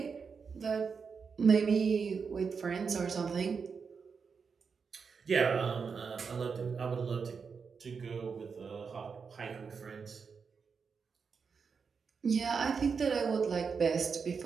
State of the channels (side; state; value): left; quieter; 5.6 dB